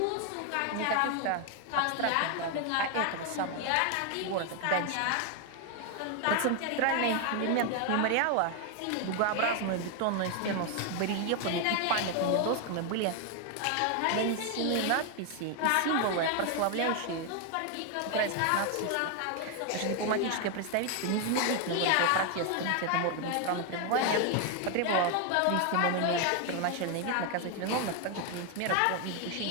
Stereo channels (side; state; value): both; different; correlation 0.01